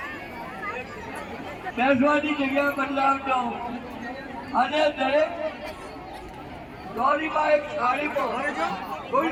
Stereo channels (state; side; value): identical; both; correlation 1.00